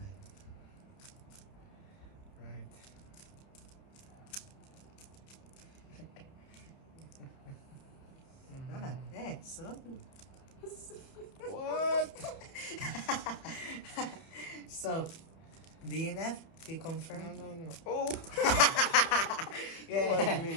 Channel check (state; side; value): late; right; 30 ms